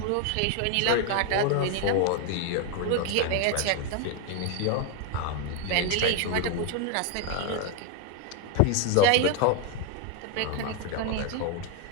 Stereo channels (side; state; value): both; different; correlation 0.01